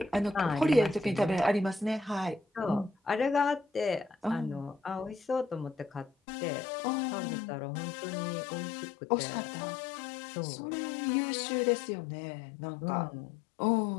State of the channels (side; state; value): right; drops out; at 6.1 s